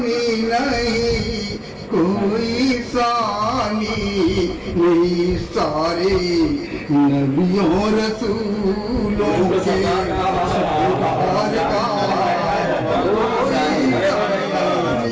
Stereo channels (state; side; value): identical; both; correlation 1.00